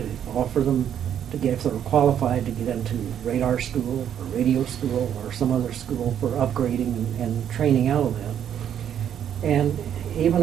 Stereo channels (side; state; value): left; quieter; 9.5 dB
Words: offer them to get, if they were qualified, to get into radar school or radio school or some other school for upgrading and training out of that. And even